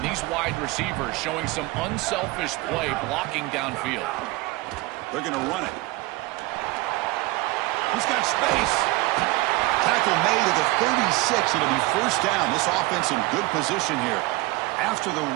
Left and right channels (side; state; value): left; quieter; 21.2 dB